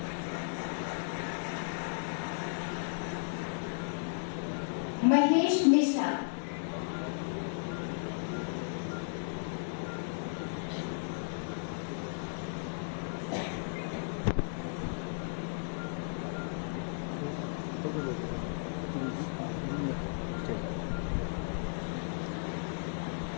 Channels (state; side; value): silent; right; digital silence